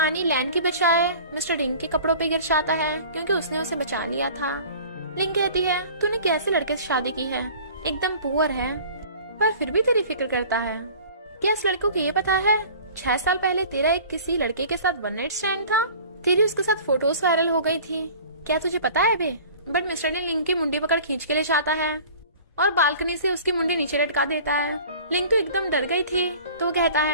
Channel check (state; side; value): inverted; both; correlation -0.44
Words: लैन की बचाए मिस्टर डिंग के कपड़ों पे गिर जाता है क्योंकि उसने उसे बचा लिया था। लिंग कहती है तूने कैसे लड़के से शादी की है, एकदम पुअर है पर फिर भी तेरी फिक्र करता है। क्या इस लड़के को ये पता है 6 साल पहले तेरा एक किसी लड़के के साथ वन नाइट स्टैंड था, तेरी उसके साथ फोटोज वायरल हो गई थी, क्या तुझे पता है बे? बट मिस्टर ने लिंग की मुंडी पकड़ खींच के ले जाता है और बालकनी से उसकी मुंडी नीचे लटका देता है। लिंग तो एकदम डर गई थी तो वो कहता